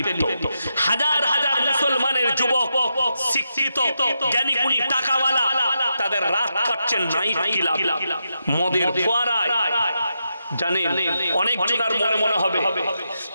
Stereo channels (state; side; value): inverted; both; correlation -0.85